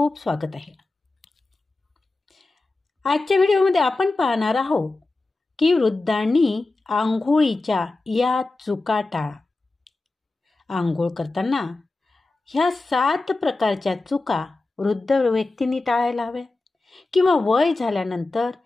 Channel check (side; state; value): right; quieter; 3.2 dB